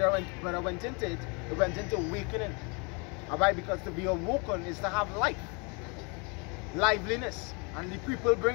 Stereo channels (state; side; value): quieter; right; 32.1 dB